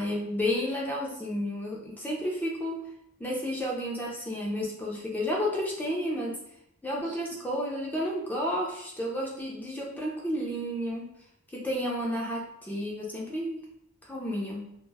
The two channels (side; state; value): both; normal; correlation 0.54